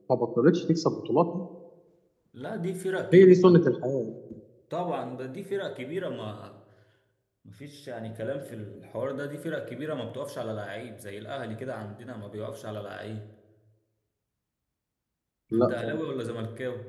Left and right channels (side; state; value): both; identical; correlation 1.00